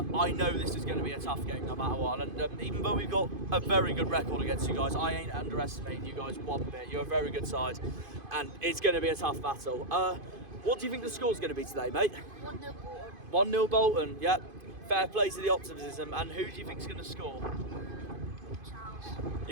I know this is going to be a tough game no matter what. And even though we've got a very good record against you guys, I ain't underestimating you guys one bit. You're a very good side, and it's going to be a tough battle. What do you think the score's going to be today, mate? 1-0 Bolton. 1-0 Bolton, yep. Fair play to the optimism. And who do you think's going to score? Charles.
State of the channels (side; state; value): left; late; 2.5 ms